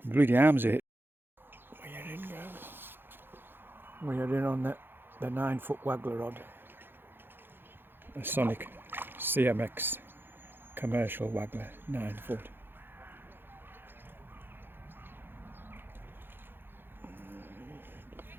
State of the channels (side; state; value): left; late; 0.10 ms